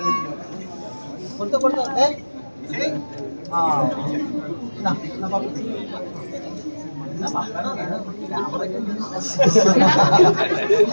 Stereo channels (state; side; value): inverted; both; correlation -1.00